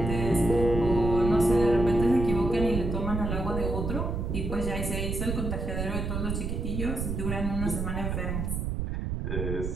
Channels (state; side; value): noise; right; rumble, 2 dB below the sound